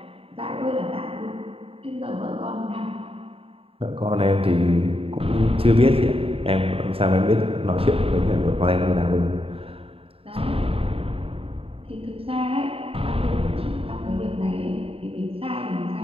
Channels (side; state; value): left; late; 0.27 ms